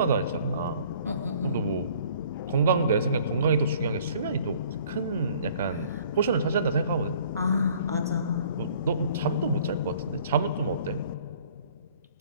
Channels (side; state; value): both; inverted; correlation -0.55